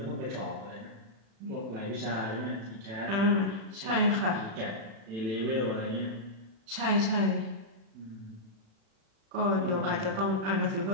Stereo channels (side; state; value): left; late; 36 ms